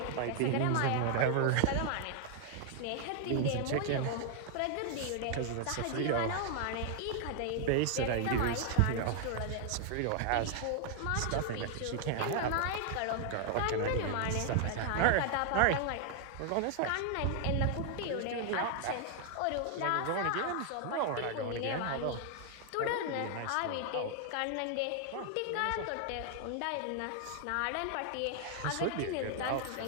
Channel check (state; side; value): different; both; correlation 0.00